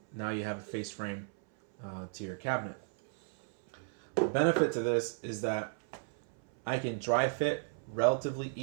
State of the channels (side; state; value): left; silent; 55 dB below the other